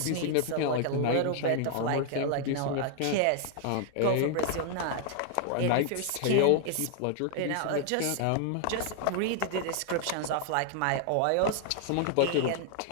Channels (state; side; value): different; both; correlation 0.00